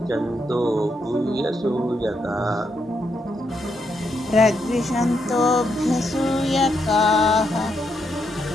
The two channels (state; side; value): normal; both; correlation 0.79